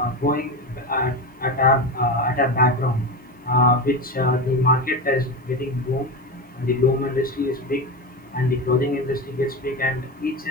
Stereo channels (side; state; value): both; normal; correlation 0.20